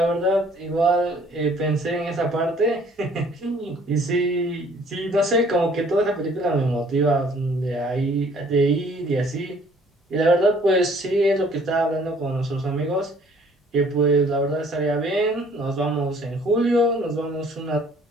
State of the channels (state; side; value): normal; both; correlation 0.57